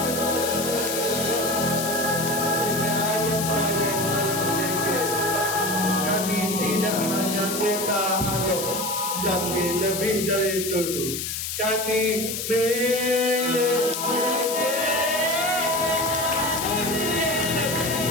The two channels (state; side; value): noise; left; hiss, 4 dB below the sound